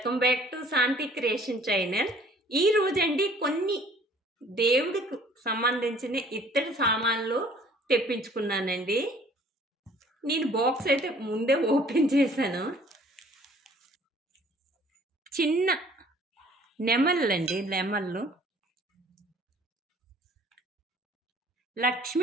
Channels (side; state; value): both; normal; correlation 0.55